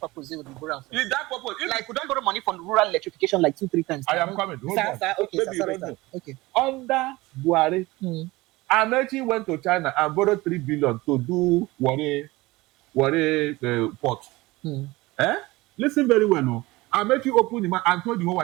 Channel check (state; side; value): quieter; left; 20.7 dB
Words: They will borrow. Is that purpose? Like we don't borrow money from rural electrification like 2-3 times. I am coming. Hold on. Okay. Okay. Under Buhari, Amechi went to China and borrowed 3 billion to do Warri port. Listen very well, no. Amechi opened the mouth and told the whole